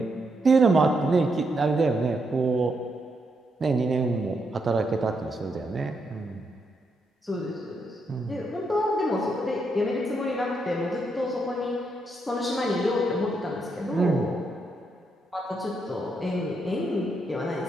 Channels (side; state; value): both; normal; correlation 0.79